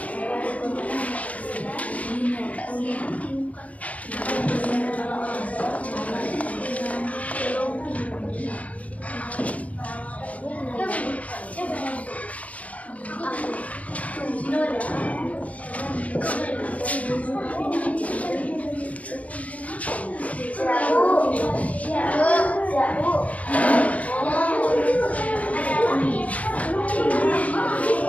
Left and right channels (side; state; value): right; late; 0.068 ms